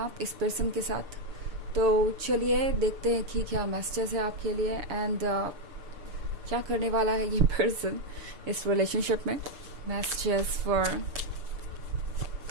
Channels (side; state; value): left; late; 6.8 ms